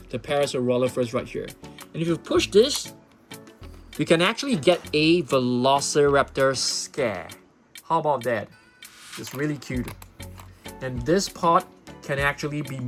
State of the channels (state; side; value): identical; both; correlation 1.00